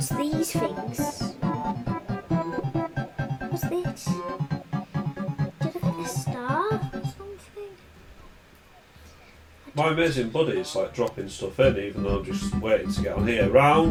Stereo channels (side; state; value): both; identical; correlation 1.00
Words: these things? What's this? Did I get a star or something? My amazing buddy is like dropping stuff in even though I'm just waiting to get on here.